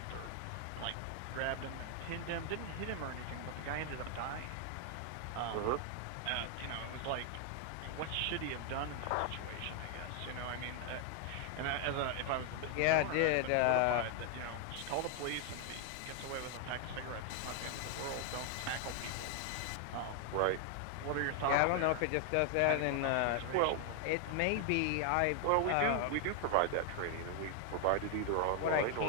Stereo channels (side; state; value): both; different; correlation 0.00